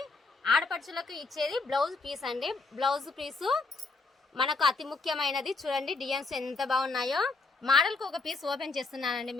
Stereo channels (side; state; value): right; quieter; 3.8 dB